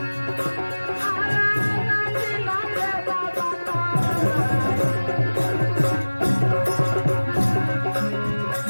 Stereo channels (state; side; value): inverted; both; correlation -1.00